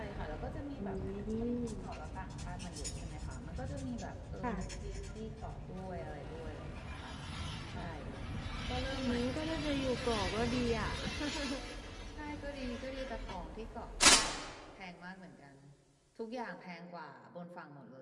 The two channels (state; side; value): identical; both; correlation 1.00